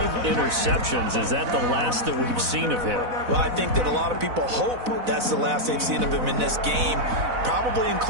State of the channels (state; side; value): late; left; 4.0 ms